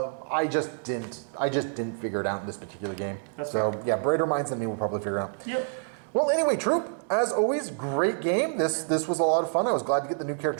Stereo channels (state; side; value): silent; left; 60 dB below the other